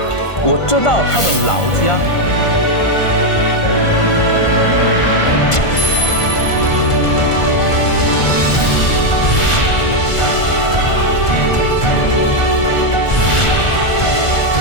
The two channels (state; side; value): late; right; 1.5 ms